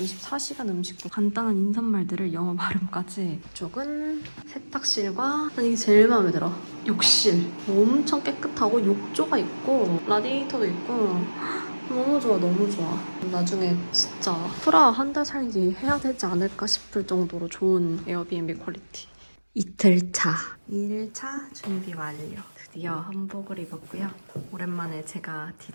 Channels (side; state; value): both; inverted; correlation -1.00